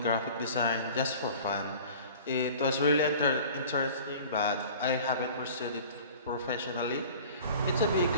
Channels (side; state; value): both; inverted; correlation -0.43